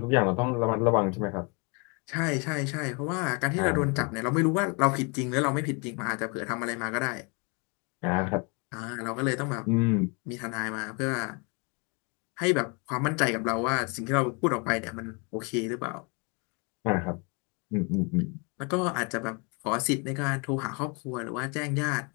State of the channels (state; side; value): quieter; right; 31.4 dB